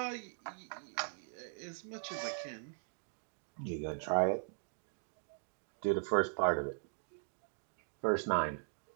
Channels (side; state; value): left; silent; digital silence